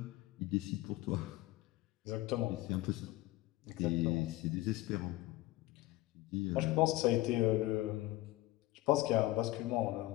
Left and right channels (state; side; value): quieter; right; 17.4 dB